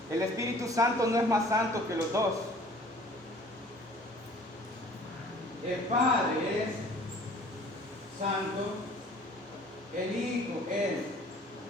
El Espíritu Santo no es más santo que los dos. El Padre es santo, el Hijo es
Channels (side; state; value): both; normal; correlation 0.50